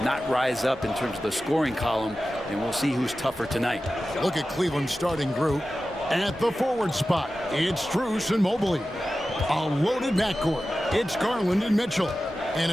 not rise up in terms of the scoring column, and we'll see who's tougher tonight. Look at Cleveland's starting group. At the forward spot, it's Strus and Mobley. A loaded backcourt. It's Garland and Mitchell. And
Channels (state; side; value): normal; both; correlation 0.94